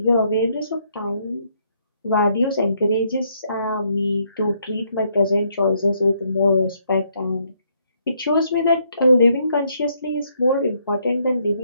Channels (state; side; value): inverted; both; correlation -0.72